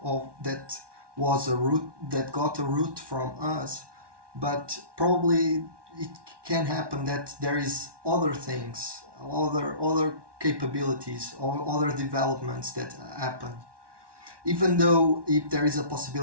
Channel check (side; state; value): left; late; 1.1 ms